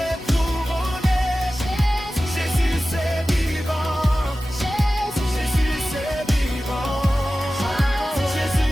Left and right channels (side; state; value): both; normal; correlation 0.95